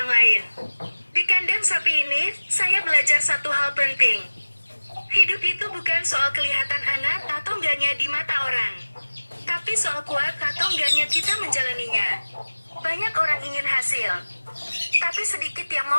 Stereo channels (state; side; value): inverted; both; correlation -1.00